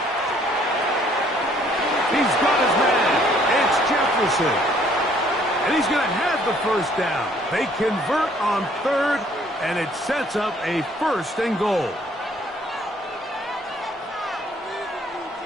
He's got his man. It's Jefferson. And he's going to have the 1st down. They convert on 3rd, and it sets up a 1st and goal.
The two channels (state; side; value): normal; both; correlation 0.62